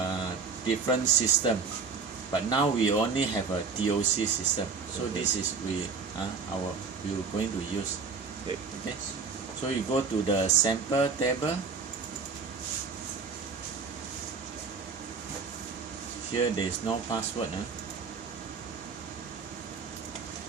different system, but now we only have a TOC system. So this is we are going to use. Okay. So you go to the sample table. Here there is no password.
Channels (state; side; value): quieter; left; 5.2 dB